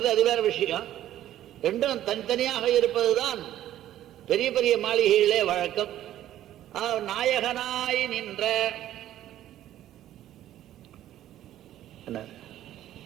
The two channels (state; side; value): quieter; left; 12.7 dB